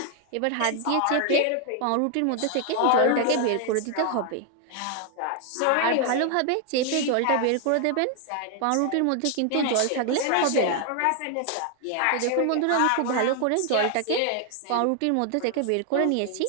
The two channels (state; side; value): different; both; correlation 0.00